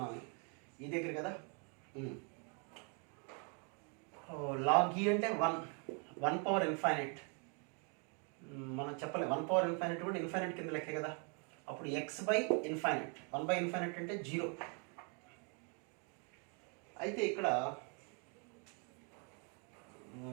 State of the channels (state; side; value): quieter; left; 37.3 dB